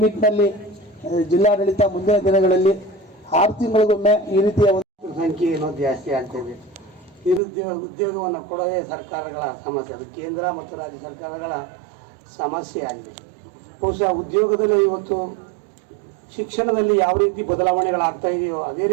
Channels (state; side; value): drops out; left; at 7.4 s